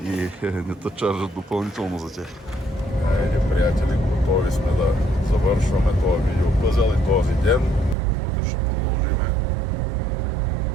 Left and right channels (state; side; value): drops out; left; at 8.0 s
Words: И не те чаржат допълнително за тях. Айде, приятели, готови сме да завършваме този видеопъзел и този ден. Утре ще продължиме.